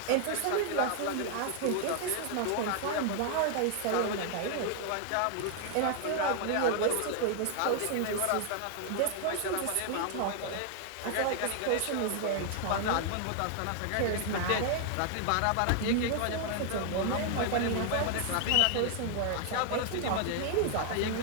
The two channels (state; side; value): different; both; correlation 0.00